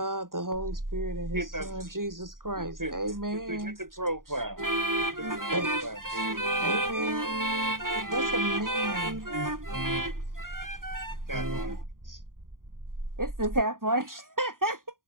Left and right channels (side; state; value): left; late; 0.91 ms